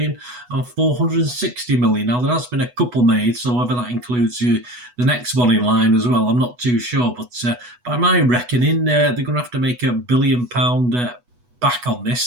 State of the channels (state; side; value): late; left; 8.1 ms